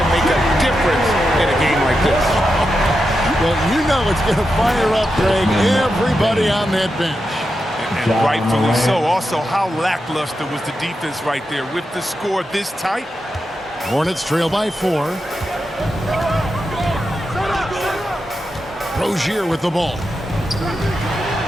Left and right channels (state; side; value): normal; both; correlation 0.88